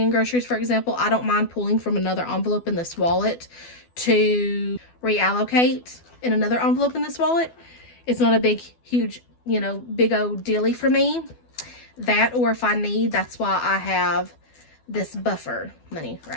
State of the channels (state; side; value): late; right; 12 ms